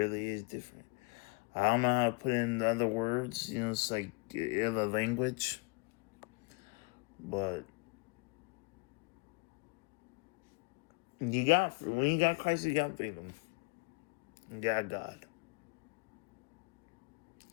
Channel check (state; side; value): quieter; right; 30.1 dB